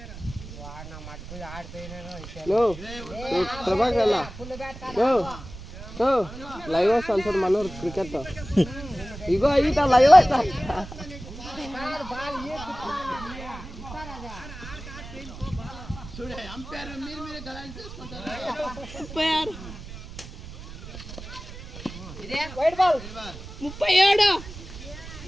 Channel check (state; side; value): noise; right; rumble, 13 dB below the sound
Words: లైవ్ వస్తాను సార్ మనోరు క్రికెట్ ఇగో ఈత లైవ్ వస్తా white ball 37